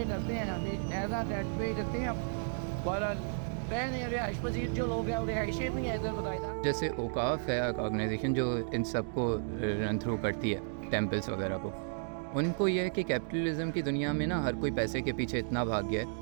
करते हैं, हमें ऐसा रेंट पे करते हैं। पर रिहाइश पजीर जो लोग हैं रिहाइशें भी हैं इधर बताया। जैसे औकाफ है ऑर्गेनाइजेशन जो इन सबको रन थ्रू करती है टेम्पल्स वगैरह को, उनको यह है कि कैपिटलिज्म की दुनिया में ना हर कोई पैसे के पीछे इतना भाग गया है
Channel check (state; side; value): silent; left; digital silence